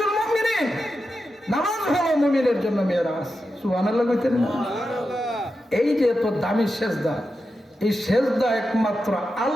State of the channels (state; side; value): normal; both; correlation 0.89